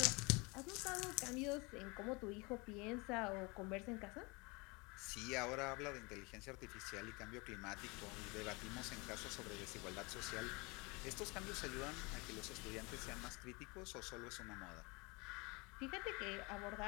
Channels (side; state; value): right; quieter; 27.5 dB